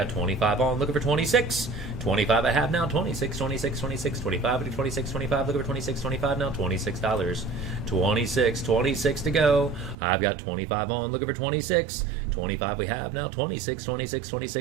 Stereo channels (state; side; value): drops out; left; at 10.0 s